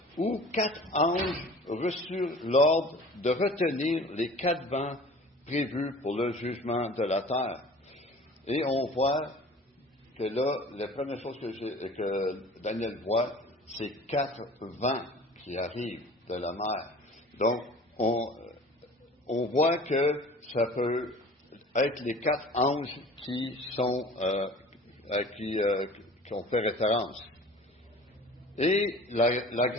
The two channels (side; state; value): both; normal; correlation 0.44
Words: où 4 anges reçurent l'ordre de retenir les 4 vents prévus pour le jugement de la terre. Et on voit que là, la première chose que Daniel voit, c'est 4 vents qui arrivent de la mer. Donc, on voit que ça peut être les 4 anges qui ont fait référence. Et la